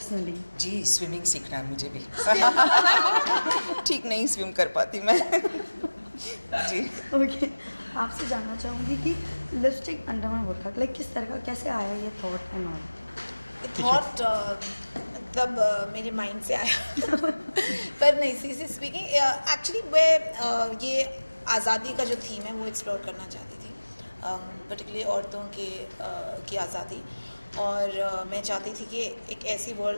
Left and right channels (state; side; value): inverted; both; correlation -1.00